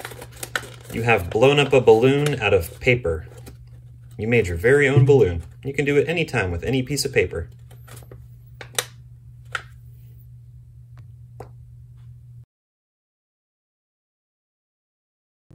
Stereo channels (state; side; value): identical; both; correlation 1.00